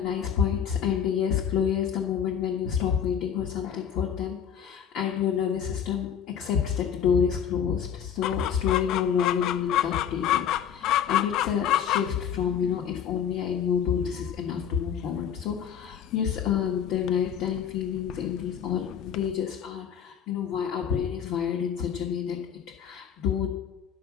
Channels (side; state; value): right; quieter; 8.5 dB